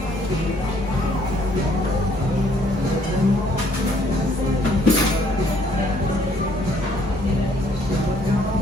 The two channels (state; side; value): normal; both; correlation 0.64